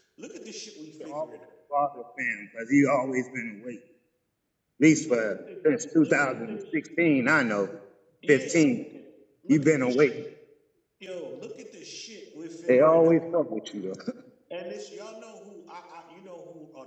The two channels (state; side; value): identical; both; correlation 1.00